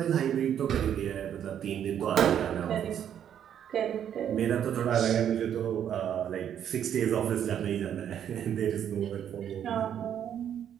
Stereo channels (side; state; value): left; quieter; 9.5 dB